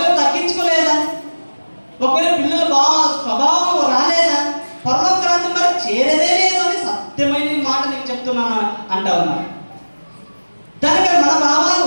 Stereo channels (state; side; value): inverted; both; correlation -1.00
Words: తగ్గించుకోలేదా, ఒకవేళ పిల్లలు బాగా స్వభావం రాలేదా, పరలోక రాజ్యం మరి చేరేదే లేదు అని సత్యమైన మాట నీకు చెప్తున్నాను అంటా ఉన్నాను. దానికి మన